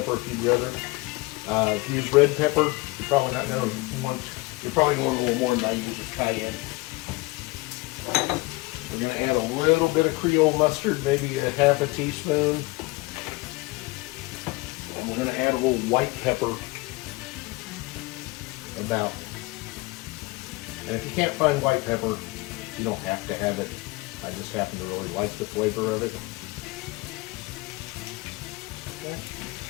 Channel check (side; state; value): right; quieter; 23.2 dB